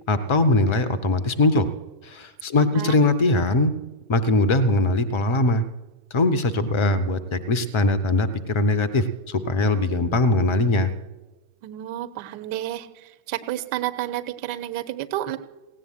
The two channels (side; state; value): right; late; 1.4 ms